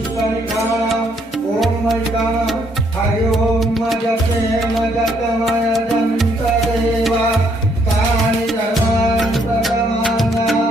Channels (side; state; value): both; normal; correlation 0.69